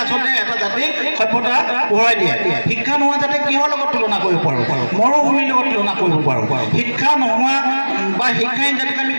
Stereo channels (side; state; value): both; inverted; correlation -1.00